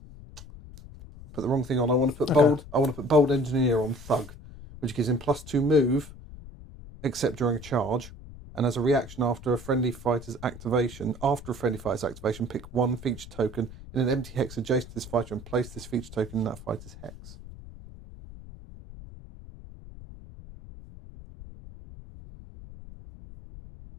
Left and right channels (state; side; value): noise; left; rumble, 15 dB below the sound